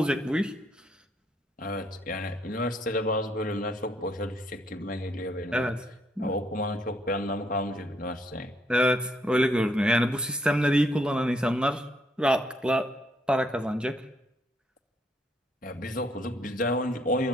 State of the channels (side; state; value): both; normal; correlation 0.72